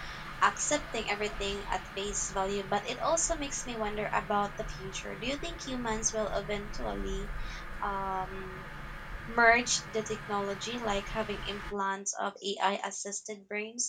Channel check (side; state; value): both; identical; correlation 1.00